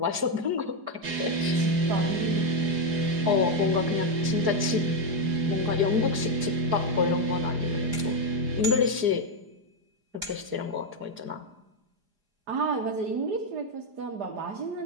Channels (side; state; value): left; late; 4.9 ms